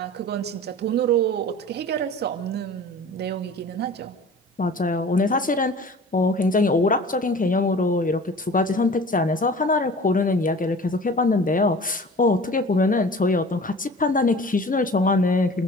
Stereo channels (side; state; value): both; normal; correlation 0.42